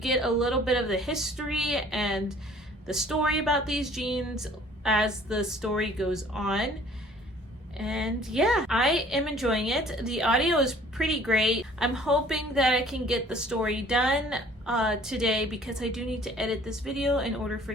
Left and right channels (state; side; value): normal; both; correlation 0.53